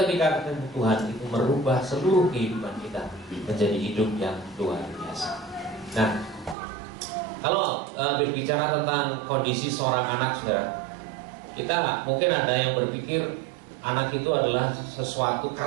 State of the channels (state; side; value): drops out; left; at 6.6 s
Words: ketemu Tuhan itu merubah seluruh kehidupan kita menjadi hidup yang luar biasa. Nah, kalau berbicara tentang kondisi seorang anak saudara, kita mungkin ada yang berpikir anak itu adalah sesuatu